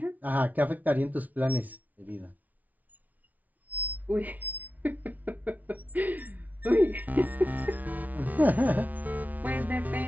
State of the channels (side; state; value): left; late; 0.076 ms